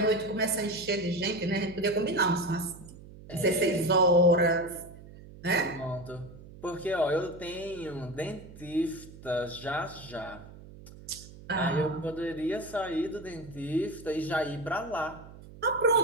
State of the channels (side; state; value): right; noise; hum, 18 dB below the sound